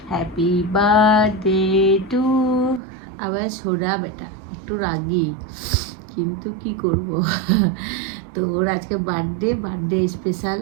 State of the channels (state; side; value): drops out; left; at 2.8 s